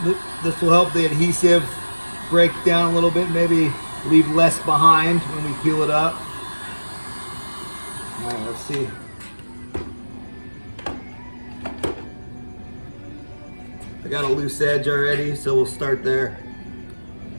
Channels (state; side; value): inverted; both; correlation -1.00